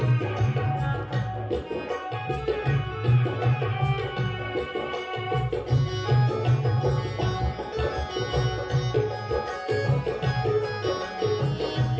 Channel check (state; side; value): identical; both; correlation 1.00